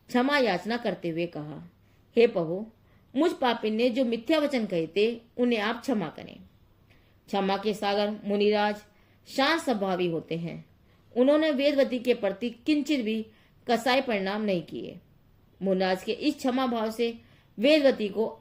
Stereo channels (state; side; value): identical; both; correlation 1.00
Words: क्षमा याचना करते हुए कहा, हे प्रभु, मुझ पापी ने जो मिथ्या वचन कहे थे उन्हें आप क्षमा करें। क्षमा के सागर मुनिराज शांत स्वभावी होते हैं। उन्होंने वेदवती के प्रति किंचित भी कसाई परिणाम नहीं किए। मुनिराज के इस क्षमा भाव से वेदवती को